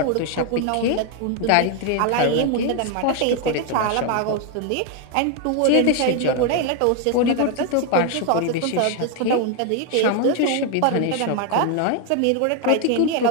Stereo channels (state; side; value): different; both; correlation 0.01